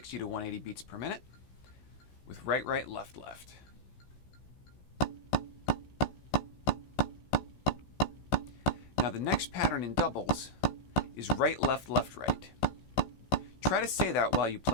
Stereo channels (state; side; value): late; right; 16 ms